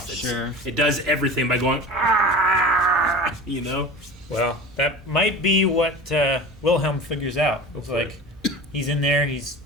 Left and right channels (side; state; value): both; normal; correlation 0.34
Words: Sure. It does everything by going ah, you know. Well, that might be what Wilhelm figures out. It's Hopefully. like he's in there. He's